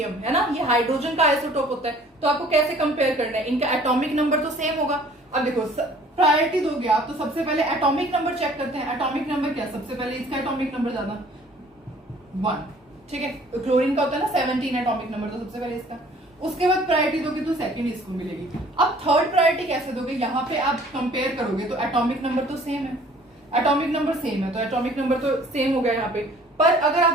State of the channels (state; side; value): normal; both; correlation 0.54